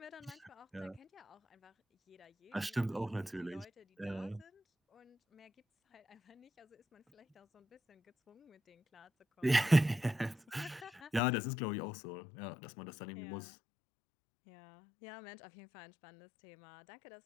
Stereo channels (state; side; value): drops out; right; at 11.2 s